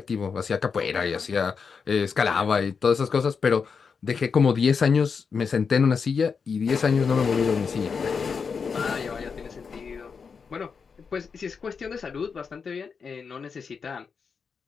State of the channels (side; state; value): right; quieter; 5.7 dB